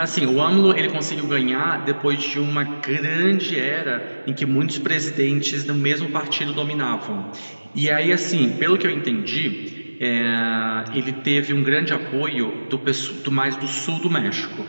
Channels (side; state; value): both; inverted; correlation -1.00